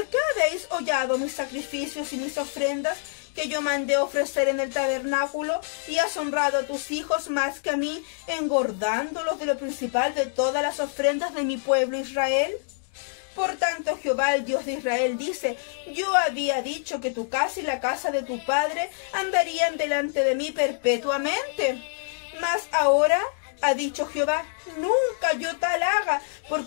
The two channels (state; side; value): silent; right; digital silence